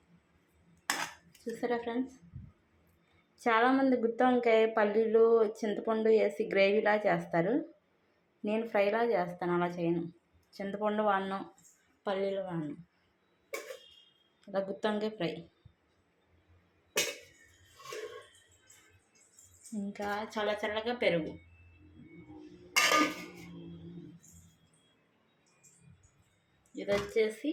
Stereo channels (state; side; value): identical; both; correlation 1.00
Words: చూసారా ఫ్రెండ్స్, చాలామంది గుత్తి వంకాయ పల్లీలు చింతపండు వేసి గ్రేవీలా చేస్తారు. నేను ఫ్రైలా చేస్తాను, అలా చేయను. చింతపండు వాడను, పల్లీలు వాడను. ఇలా గుత్తి వంకాయ ఫ్రై. ఇంకా చల్లగా పెరుగు. ఇది వచ్చేసి